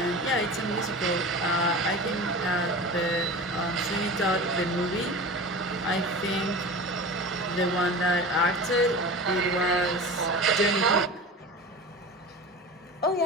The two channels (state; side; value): normal; both; correlation 0.33